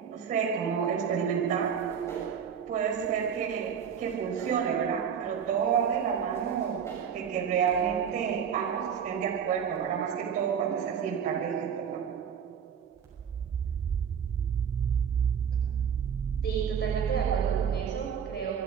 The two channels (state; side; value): quieter; left; 7.6 dB